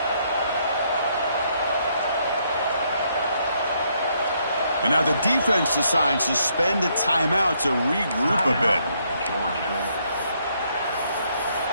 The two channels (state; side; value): inverted; both; correlation -0.72